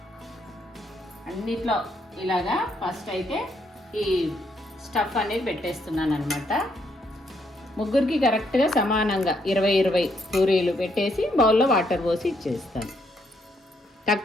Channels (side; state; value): both; normal; correlation 0.74